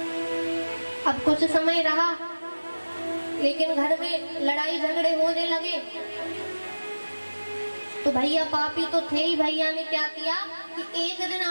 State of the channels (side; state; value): both; inverted; correlation -1.00